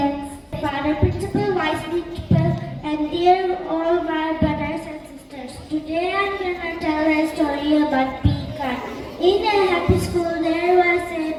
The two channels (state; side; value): identical; both; correlation 1.00